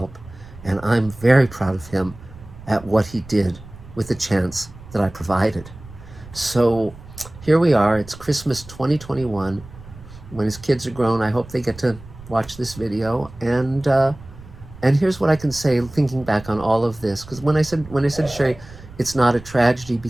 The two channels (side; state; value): right; noise; rumble, 18 dB below the sound